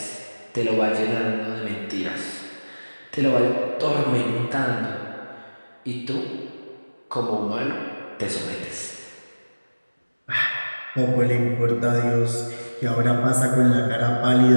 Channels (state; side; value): inverted; both; correlation -1.00